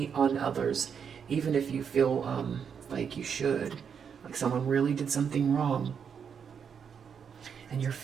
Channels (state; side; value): quieter; left; 7.1 dB